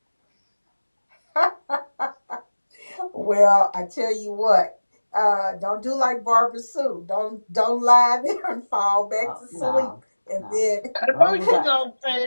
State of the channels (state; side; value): inverted; both; correlation -1.00